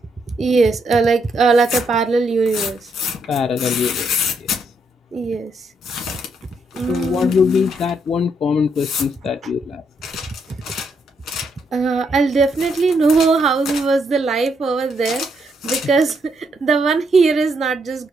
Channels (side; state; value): both; normal; correlation 0.76